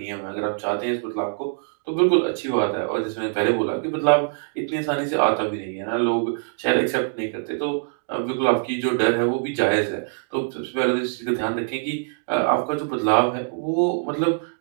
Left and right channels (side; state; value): left; silent; digital silence